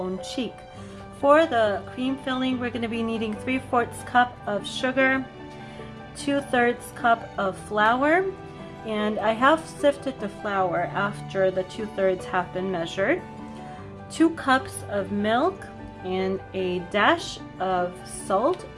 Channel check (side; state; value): both; identical; correlation 1.00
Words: For the cream filling, we're going to be needing 3/4 cup of sugar, 2/3 cup of flour, and I have sifted the flour after the 2/3 have been measured, 2 cups of milk, and a dash of salt,